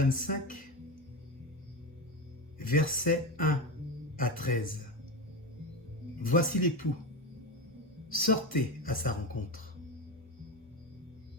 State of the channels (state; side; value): normal; both; correlation 0.19